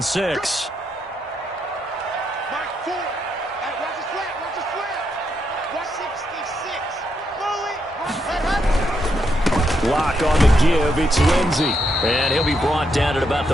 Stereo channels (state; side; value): normal; both; correlation 0.79